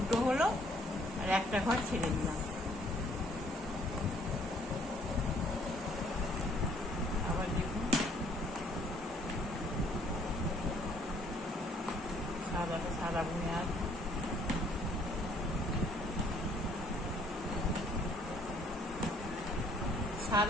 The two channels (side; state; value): both; normal; correlation 0.63